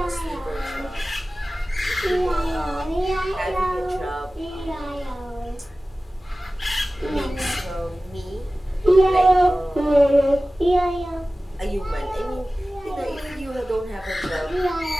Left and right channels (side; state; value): both; normal; correlation 0.97